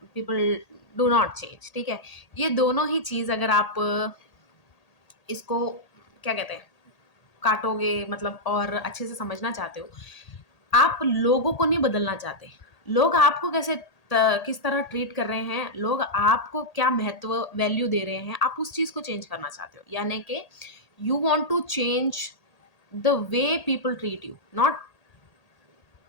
पीपल डू नॉट चेंज, ठीक है? ये दोनों ही चीज़ अगर आप इसको क्या कहते हैं, काटोगे मतलब और अच्छे से समझना चाहते हो, आप लोगों को नहीं बदलना चाहते। लोग आपको किस तरह ट्रीट कर रहे हैं, लोग आपको क्या महत्व वैल्यू दे रहे हैं, आप उस चीज़ को चेंज करना चाहते हो। यानी कि you want to change the way people treat you, not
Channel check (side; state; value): right; late; 1.8 ms